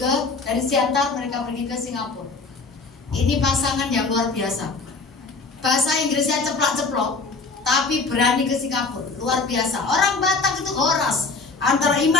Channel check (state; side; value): quieter; right; 4.1 dB